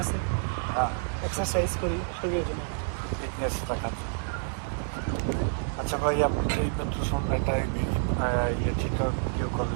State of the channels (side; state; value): left; silent; 59 dB below the other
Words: আছে, হ্যাঁ, এক্সারসাইজ করি, শরীরের জন্য ভালো। ফিটনেস রাখাচ্ছি। আচ্ছা ভাই, আপনি এই মাত্র সঙ্গে একটা ঠিক ভিডিও